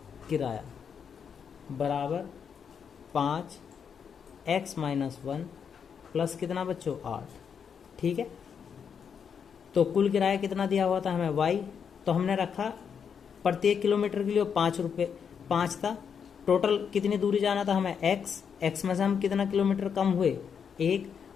किराया बराबर 5x माइनस 1 प्लस कितना बच्चों 8। ठीक है, तो कुल किराया कितना दिया हुआ था हमें y, तो हमने रखा प्रत्येक किलोमीटर के लिए 5 रुपये 5 था। टोटल कितनी दूरी जाना था हमें x में से हम कितना किलोमीटर कम हुए 1,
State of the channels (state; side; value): quieter; right; 7.1 dB